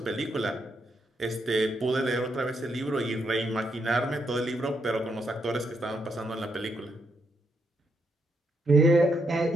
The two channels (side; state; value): both; normal; correlation 0.78